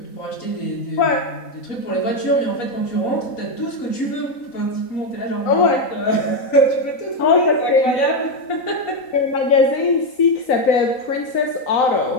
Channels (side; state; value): right; late; 3.9 ms